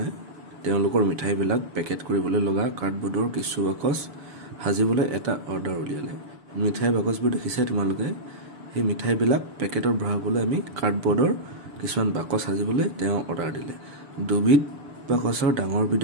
তেওঁলোকৰ মিঠাই বিলাক পেকেট কৰিবলৈ লগা কাৰ্ডবোৰ্ডৰ কিছু বাকচ হাজিবলৈ এটা অৰ্ডাৰ উলিয়ালে মিঠাই বাকচবোৰ দেখিছে তোমালোকে এই মিঠাই বিলাক পেকেটৰ ভৰাবলৈ আমি কাৰ্ডবোৰ্ডৰ কিছুমান বাকচ হাজিবলৈ তেওঁ অৰ্ডাৰ দিলে দুবিধ বাকচৰ ডাঙৰ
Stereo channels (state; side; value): late; left; 6.8 ms